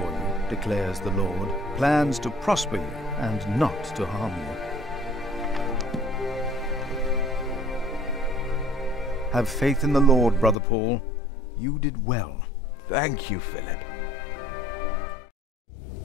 you, declares the Lord, plans to prosper you and not to harm you. Have faith in the Lord, Brother Paul. You did well. Thank you, Philip.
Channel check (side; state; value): right; drops out; at 10.6 s